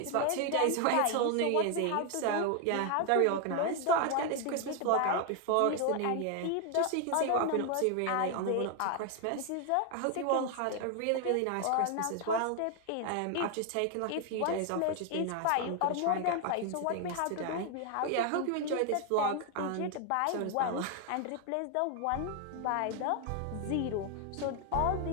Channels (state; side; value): different; both; correlation 0.00